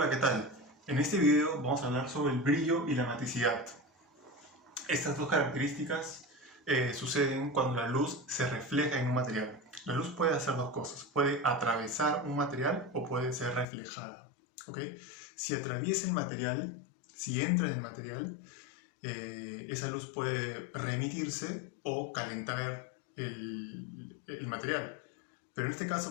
¿qué tal? En este video vamos a hablar sobre el brillo y la maticidad. Estas dos características suceden cuando la luz se refleja en un material. La luz puede hacer dos cosas, puede atravesar un material o puede ser reflejada. ¿Ok? Si atraviesa el material, si entra en el material, esa luz puede remitirse o calentar el material. Pero en este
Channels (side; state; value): right; drops out; at 13.7 s